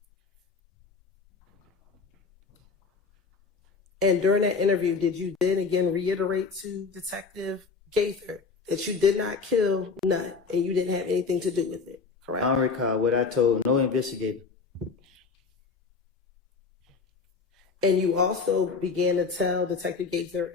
And during that interview, did you then again reiterate to Detective Gaither that you did not kill Nut and you didn't have anything to do with it, correct? I don't recall what I told no investigator. And you also began to tell Detective Gaither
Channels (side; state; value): right; quieter; 4.9 dB